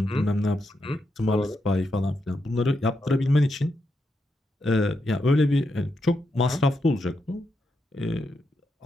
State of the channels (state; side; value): normal; both; correlation 0.84